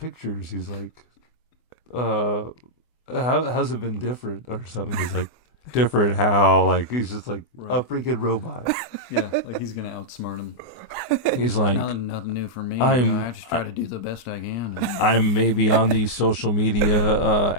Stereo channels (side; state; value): right; late; 24 ms